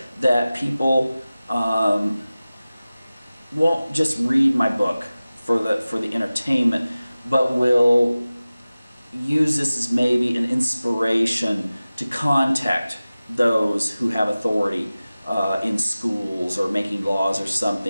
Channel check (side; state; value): both; inverted; correlation -0.97